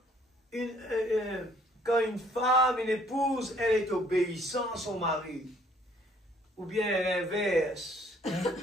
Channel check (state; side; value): normal; both; correlation 0.62